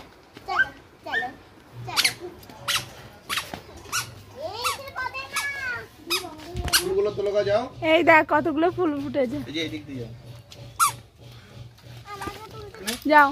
চলো চলো চলো ফুলগুলো তোলো যাও। এই দেখ কতগুলো ফুল ফুটেছে। এই যে এদিক দিয়ে যাও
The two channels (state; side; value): identical; both; correlation 1.00